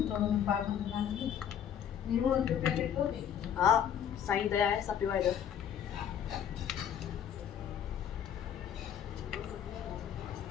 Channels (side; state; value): right; quieter; 9.1 dB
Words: थोड़ो पाक दान दी नीरो के पैकेट हो गई। हां साईं दया है सब पीवा इधर।